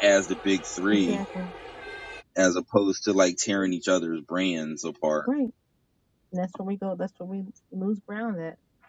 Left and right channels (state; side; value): identical; both; correlation 1.00